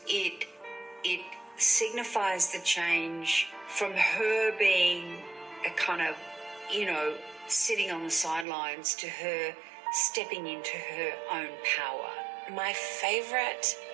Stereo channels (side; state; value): left; drops out; at 8.5 s